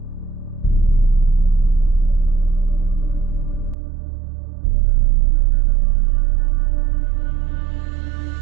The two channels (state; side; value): drops out; left; at 3.8 s